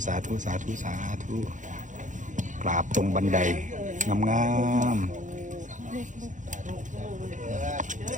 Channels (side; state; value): left; late; 0.36 ms